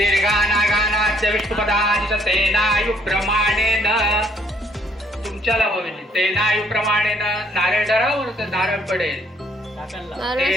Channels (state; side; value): normal; both; correlation 0.66